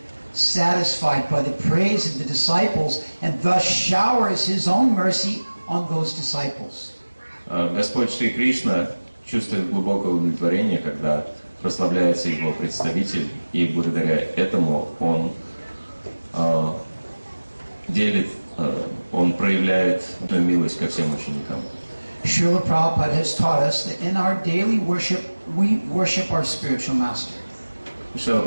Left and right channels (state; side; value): inverted; both; correlation -1.00